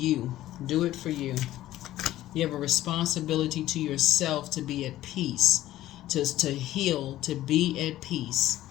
Do it for you. You have a responsibility to yourself to be at peace, to heal, to be at peace.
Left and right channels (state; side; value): quieter; right; 14.5 dB